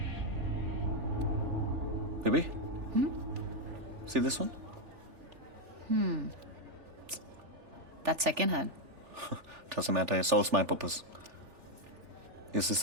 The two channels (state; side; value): late; left; 3.4 ms